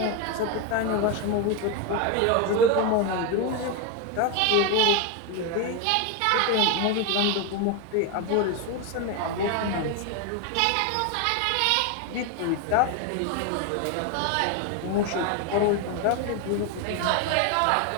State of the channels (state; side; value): different; both; correlation 0.02